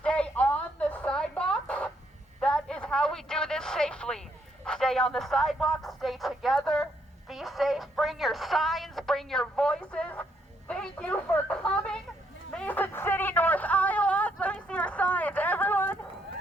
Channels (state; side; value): normal; both; correlation 0.73